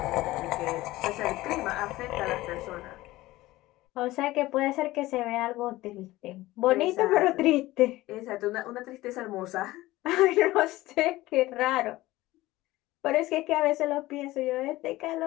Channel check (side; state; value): right; quieter; 17.9 dB